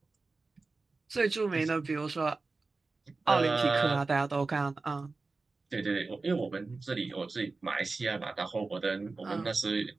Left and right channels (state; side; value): quieter; left; 3.8 dB